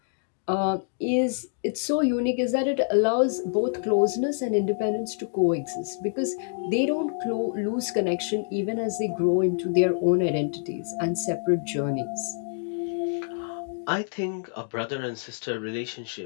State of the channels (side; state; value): right; silent; digital silence